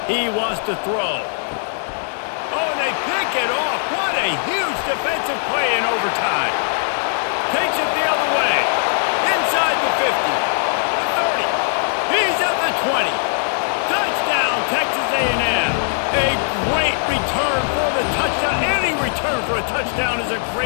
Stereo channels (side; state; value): right; silent; digital silence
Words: He wants to throw. Oh, and they pick it off. What a huge defensive play in overtime. Takes it the other way. Inside the 50. The 30. He's at the 20. Touchdown, Texas A&M. A great return for the touchdown. Any return for a touchdown is a